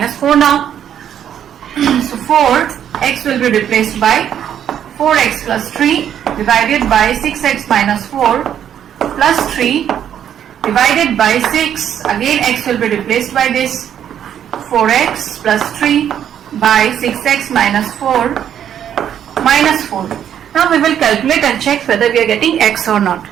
4 now. So 4x will be replaced by 4x plus 3 divided by 6x minus 4 plus 3 divided by 6. Again x will be replaced by this 4x plus 3 by 6x minus 4 minus 4. Now we will calculate and check whether we are getting x or not.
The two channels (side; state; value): left; quieter; 9.6 dB